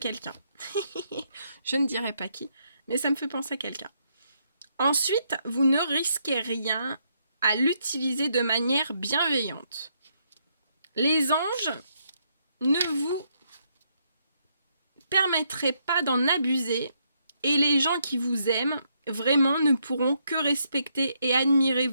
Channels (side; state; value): both; inverted; correlation -0.75